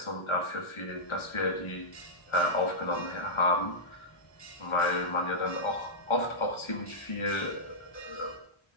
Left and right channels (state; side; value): late; right; 1.4 ms